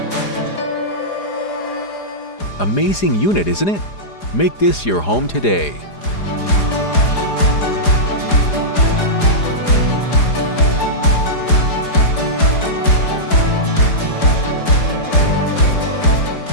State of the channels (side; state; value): right; late; 4.9 ms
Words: Amazing unit, isn't it? Make this your home today.